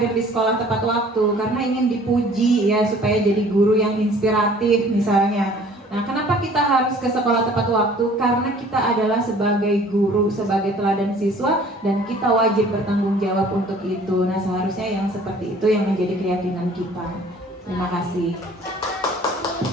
di sekolah tepat waktu? Karena ingin dipuji ya, supaya jadi guru yang inspiratif misalnya. Nah, kenapa kita harus ke sekolah tepat waktu? Karena kita adalah sebagai guru, sebagai teladan siswa, dan kita wajib bertanggung jawab untuk itu. Nah, seharusnya yang seperti itu yang menjadi keyakinan kita. Terima kasih.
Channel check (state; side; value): normal; both; correlation 0.52